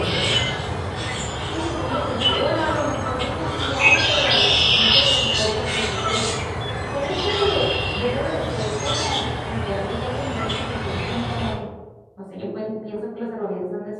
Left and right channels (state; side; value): identical; both; correlation 1.00